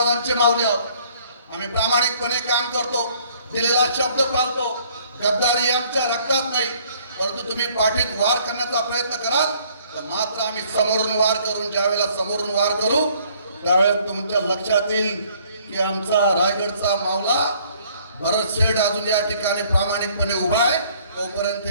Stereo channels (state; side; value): inverted; both; correlation -0.60